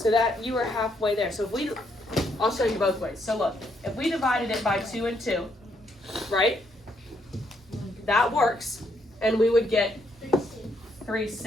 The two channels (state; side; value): normal; both; correlation 0.74